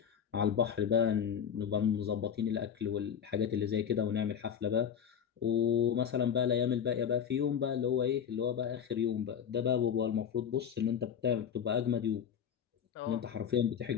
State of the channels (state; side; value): quieter; right; 8.2 dB